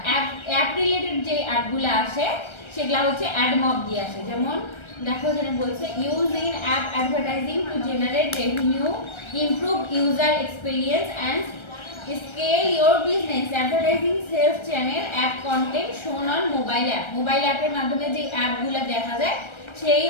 অ্যাপ রিলেটেড যে অ্যাডগুলো আসে সেগুলো হচ্ছে অ্যাডমব দিয়ে আসে। যেমন দেখো যেটা বলছে, use in app advertising to generate revenue, improve user experience and scale your business. Advertising sales channel app content shown on mobile app. Mobile অ্যাপের মাধ্যমে যে অ্যাপগুলো দেখা যায় সেই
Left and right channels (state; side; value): late; right; 1.3 ms